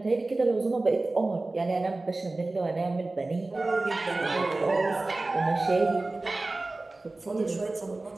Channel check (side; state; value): left; quieter; 3.1 dB